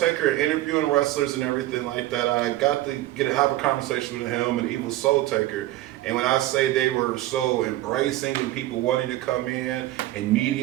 and interviewing wrestlers and everything like that, I got to have a conversation with him and Evil Soul Taker. And when I say they were so embracing and people wanting to come in and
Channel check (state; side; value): quieter; left; 15.8 dB